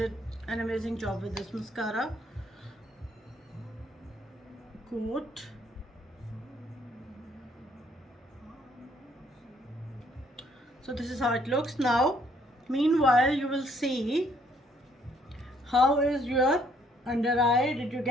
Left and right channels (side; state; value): both; normal; correlation 0.66